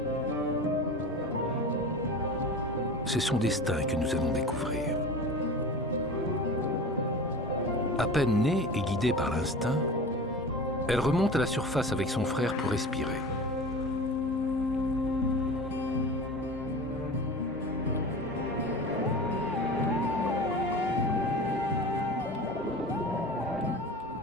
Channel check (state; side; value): normal; both; correlation 0.34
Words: C'est son destin que nous allons découvrir. À peine née et guidée par l'instinct, elle remonte à la surface avec son frère pour respirer.